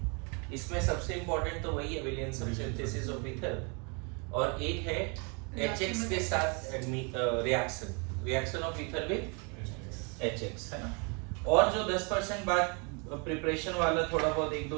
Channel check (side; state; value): left; quieter; 33.9 dB